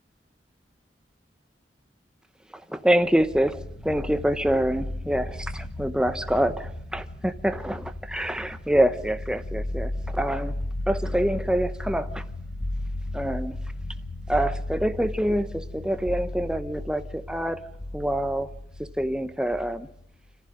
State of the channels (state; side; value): normal; both; correlation 0.93